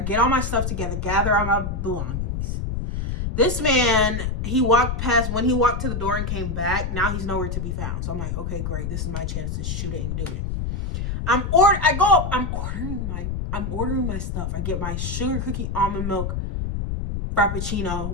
get all my stuff together, gather all my belongings. This man, he walked past, when he walked to the door and came back, now he's nowhere to be found. So I'm like, okay, great. This is my chance to shoot it and do it. I'm ordering my stuff. I get my sugar cookie almond milk Frappuccino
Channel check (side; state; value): left; noise; rumble, 3 dB below the sound